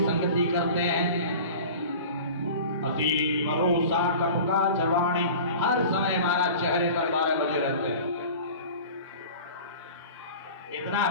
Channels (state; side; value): inverted; both; correlation -0.38